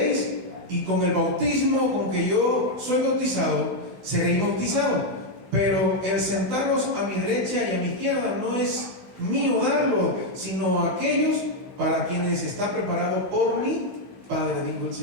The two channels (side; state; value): left; late; 15 ms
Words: y con el bautismo con que yo soy bautizado, seréis bautizados. Pero el sentaros a mi derecha y a mi izquierda no es mío darlo, sino a aquellos para quienes está preparado por mi Padre, dijo el